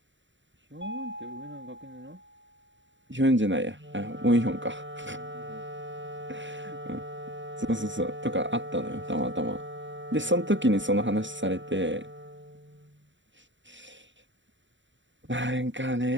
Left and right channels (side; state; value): left; late; 0.54 ms